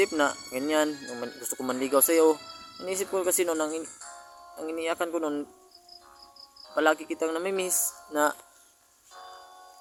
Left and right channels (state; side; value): identical; both; correlation 1.00